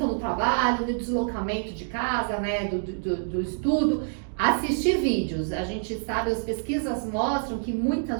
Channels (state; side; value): silent; left; digital silence